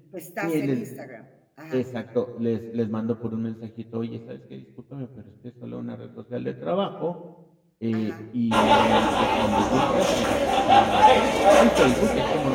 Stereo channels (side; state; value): both; identical; correlation 1.00